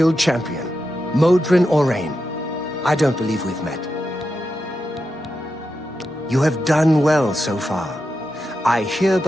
champion. Modron Orain. I don't believe we've met. You have done well so far. I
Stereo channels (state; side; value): normal; both; correlation 0.88